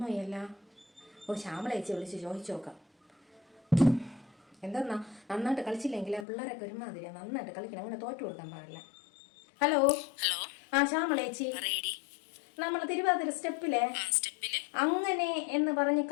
ഓ, ശ്യാമളേച്ചി വിളിച്ച് ചോദിച്ചു നോക്കാം. എന്താ നന്നായിട്ട് കളിച്ചില്ലെങ്കിൽ പിള്ളേരൊക്കെ ഒരുമാതിരിയാ. നന്നായിട്ട് കളിക്കണം, അങ്ങനെ തോറ്റു കൊടുക്കാൻ പാടില്ല. ഹലോ ഹലോ, ആ ശ്യാമളേച്ചി, നമ്മൾ തിരുവാതിര സ്റ്റെപ്പിലെ അങ്ങനെ എന്ന് പറഞ്ഞ്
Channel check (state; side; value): drops out; right; at 6.2 s